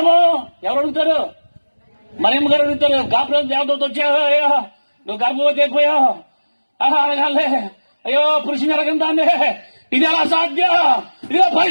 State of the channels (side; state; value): both; inverted; correlation -1.00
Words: ఎవరు అడుగుతారు? మరియమ్మ గారు అడుగుతారు. గాబ్రియెలు దేవదూత వచ్చాయో, నువ్వు గర్భవతి అయిపోయావు, అడగాలే, అయ్యో పురుషుని అడగందాన్ని, ఇది ఎలా సాధ్యం? ఇదిగో